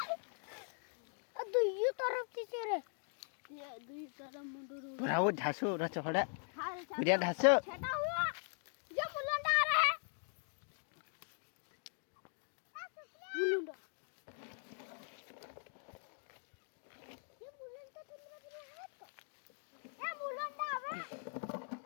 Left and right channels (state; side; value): silent; right; 50 dB below the other